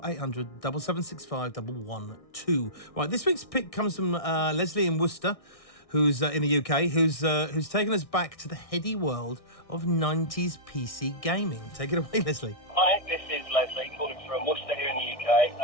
800 7765 112. Right, this week's pick comes from Leslie in Worcester, who's in the UK, who's taken us back to the heady world of 90s PC gaming. Take it away, Leslie. Hi, this is Leslie, calling from Worcester here in the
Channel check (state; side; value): late; right; 1.6 ms